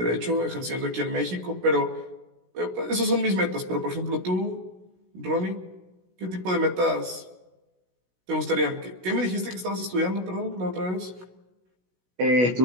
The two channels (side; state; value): left; late; 16 ms